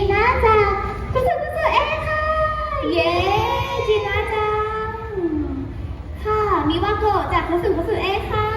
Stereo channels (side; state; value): both; identical; correlation 1.00